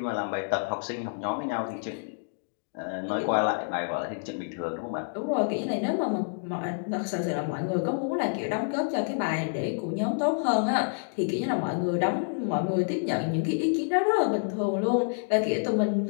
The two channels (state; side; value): silent; right; digital silence